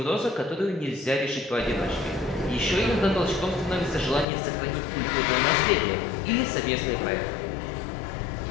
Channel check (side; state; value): right; drops out; at 4.2 s